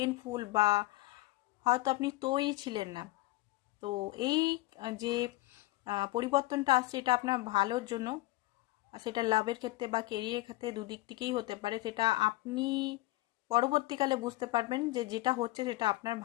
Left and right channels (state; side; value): quieter; right; 18.9 dB